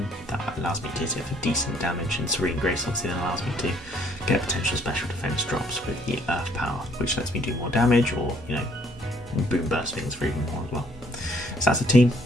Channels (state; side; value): normal; both; correlation 0.63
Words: That allows me to hit for decent damage, and Serene Grace obviously then allows me to get potential special defense drops with the Earth power, which lets me do more damage, or you know, and boom burst things for even more as well. So that's the team.